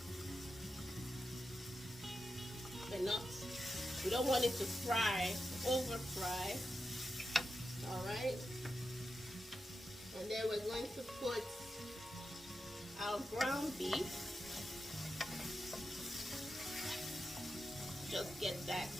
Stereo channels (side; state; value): both; normal; correlation 0.89